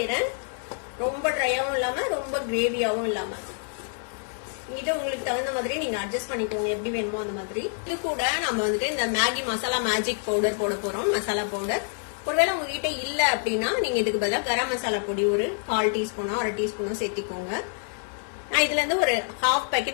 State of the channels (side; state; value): right; silent; 55 dB below the other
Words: ரொம்ப ட்ரையாவும் இல்லாம ரொம்ப கிரேவியாவும் இல்லாம. இது உங்களுக்கு தகுந்த மாதிரி நீங்க அட்ஜஸ்ட் பண்ணிக்கோங்க, எப்படி வேணுமோ அந்த மாதிரி. இது கூட நம்ம வந்துட்டு இந்த மேகி மசாலா மேஜிக் பவுடர் போட போறோம், மசாலா பவுடர். ஒருவேளை உங்ககிட்ட இல்ல அப்படின்னா நீங்க இதுக்கு பதிலாக கரம் மசாலா பொடி ஒரு 1/4 டீஸ்பூனோ 1/2 டீஸ்பூனோ சேர்த்திக்கோங்க. நான் இதுல இருந்து ஒரு 1/2